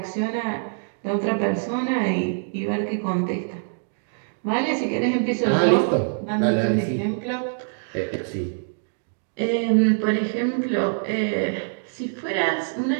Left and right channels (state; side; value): silent; left; digital silence